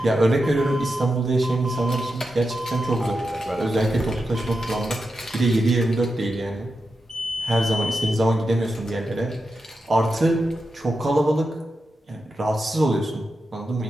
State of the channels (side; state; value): both; normal; correlation 0.89